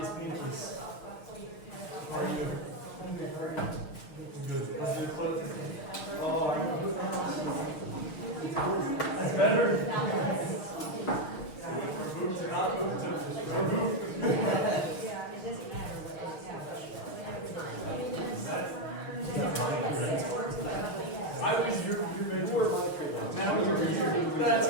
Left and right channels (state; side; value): late; right; 6.4 ms